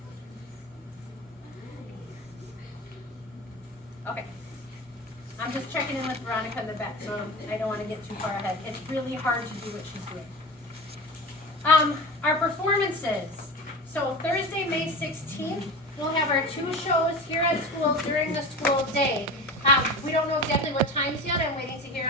Okay. I'm just checking in with Veronica in the back, so I don't want to get too far ahead. It's really hard to do what she's doing. Our performances. So Thursday, May 16th, we'll have our 2 shows here at school during the school day. We don't know exactly what times yet. I'm waiting to hear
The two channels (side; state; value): both; normal; correlation 0.30